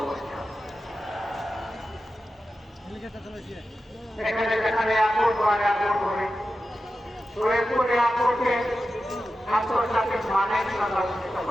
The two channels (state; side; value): normal; both; correlation 0.92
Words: এখানে যেখানে এয়ারপোর্ট বা এয়ারপোর্ট হবে, সৈয়দপুর এয়ারপোর্টে আন্তর্জাতিক মানের সংরক্ষিত